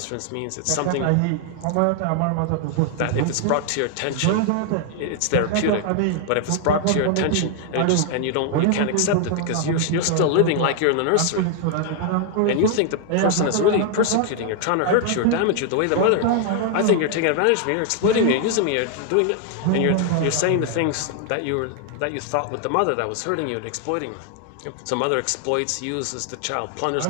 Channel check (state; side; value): different; both; correlation 0.00